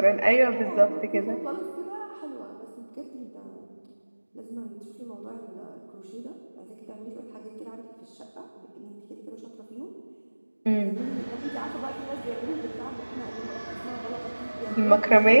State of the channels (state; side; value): inverted; both; correlation -1.00